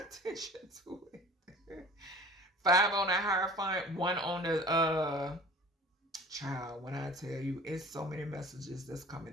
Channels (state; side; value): normal; both; correlation 0.44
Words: to it. 5 on the Hierophant, 1 on the child. When I tell you, it's so many messages that's